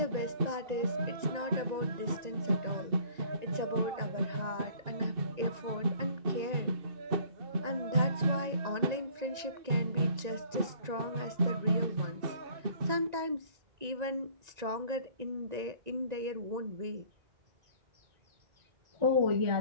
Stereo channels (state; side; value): late; left; 1.9 ms